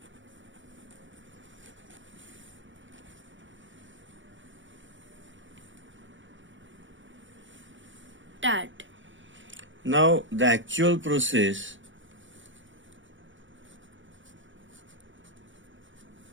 Start. Now the actual process.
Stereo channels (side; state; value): left; late; 0.56 ms